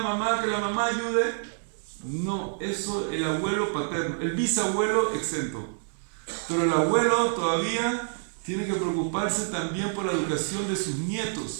mamá que la mamá ayude? No, eso el abuelo paterno, el bisabuelo exento. Pero el abuelo todavía tiene que preocuparse también por la educación de sus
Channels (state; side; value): silent; left; digital silence